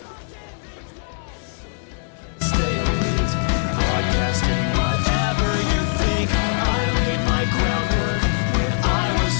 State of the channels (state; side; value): silent; right; 64 dB below the other